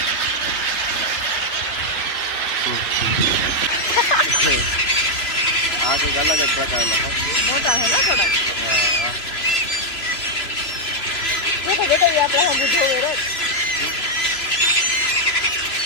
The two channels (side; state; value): right; late; 3.0 ms